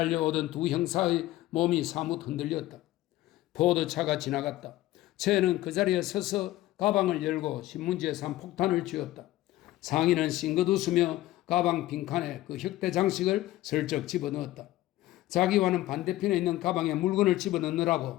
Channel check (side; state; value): right; quieter; 16.0 dB